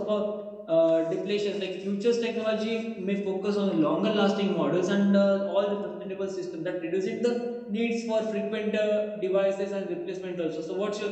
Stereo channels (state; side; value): identical; both; correlation 1.00